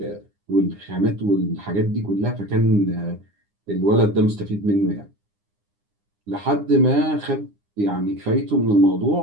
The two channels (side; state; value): left; late; 9.8 ms